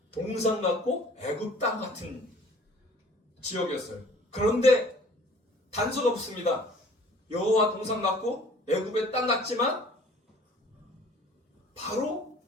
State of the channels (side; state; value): both; normal; correlation 0.51